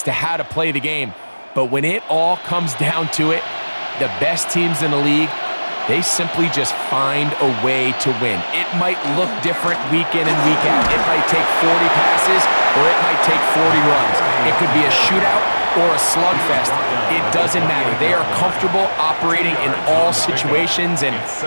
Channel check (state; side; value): inverted; both; correlation -1.00